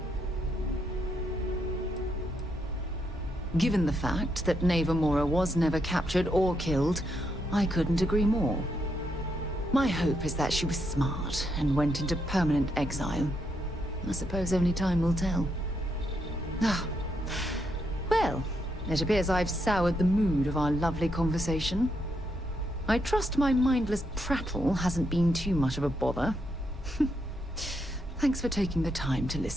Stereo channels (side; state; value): both; normal; correlation 0.79